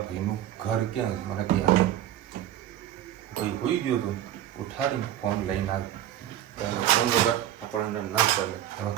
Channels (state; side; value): quieter; left; 12.0 dB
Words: ભાઈનું ઘર ક્યાં છે. મને ક્યાં ભાઈ હોઈ ગયો હતો ઉઠાડીને ફોન લઈને આવ્યો. ફોન વગર આપણને ના ચાલે. એમાં